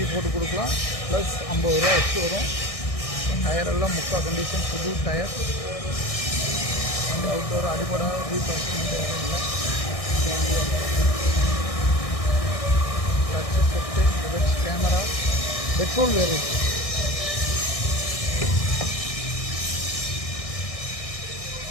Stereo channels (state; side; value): late; right; 1.6 ms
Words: போட்டு கொடுக்கலாம், ப்ளஸ் 50 ரூபா வச்சு வரும். டயரெல்லாம் முக்கால் கண்டிஷன், புது டயர். வண்டி அவுட்டோர் அடிப்படை ரீப்ளேஸ்மெண்ட் யாரும் இல்லை. Dutch set, reverse camera, petrol variant.